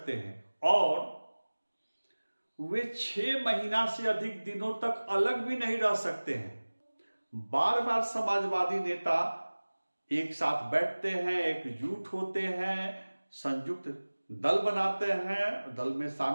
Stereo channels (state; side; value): inverted; both; correlation -1.00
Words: हैं और वे 6 महीना से अधिक दिनों तक अलग भी नहीं रह सकते हैं। बार बार समाजवादी नेता एक साथ बैठते हैं, एकजुट होते हैं, संयुक्त दल बनाते हैं, दल में